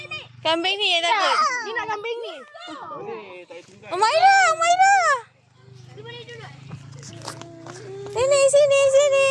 Kambing ni yang takut. Ni nak kambing ni. Boleh, tak payah tunggu. Umairah. Dia boleh duduk. Sini.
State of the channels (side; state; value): both; identical; correlation 1.00